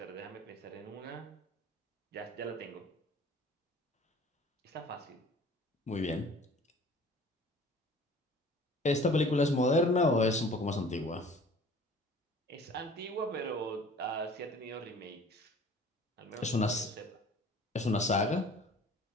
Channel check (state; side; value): normal; both; correlation 0.48